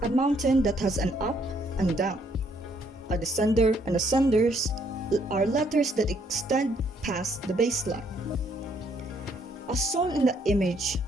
a mountain that has an up and down. A descender and ascenders are letters that extend past the baseline. As shown in the image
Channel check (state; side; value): normal; both; correlation 0.68